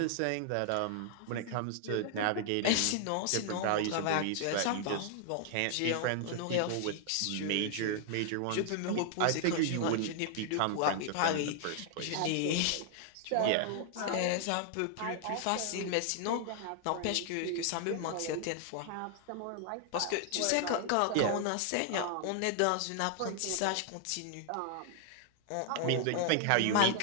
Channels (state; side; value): different; both; correlation 0.00